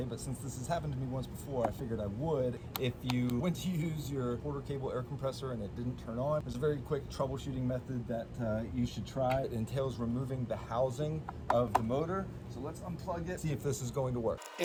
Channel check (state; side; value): identical; both; correlation 1.00